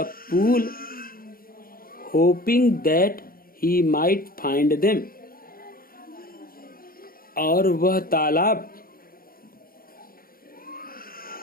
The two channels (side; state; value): right; late; 0.42 ms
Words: pool hoping that he might find them, और वह तालाब